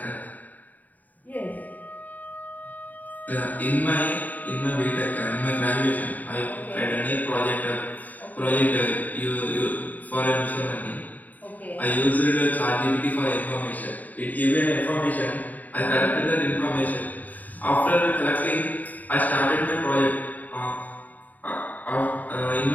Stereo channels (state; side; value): late; right; 0.079 ms